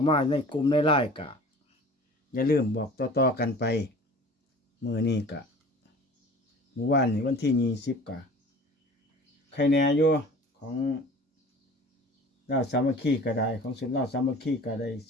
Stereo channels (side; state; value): both; normal; correlation 0.43